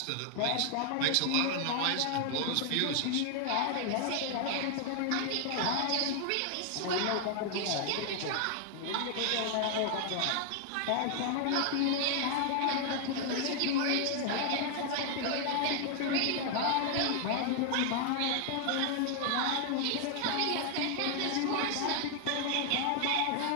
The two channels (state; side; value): different; both; correlation 0.00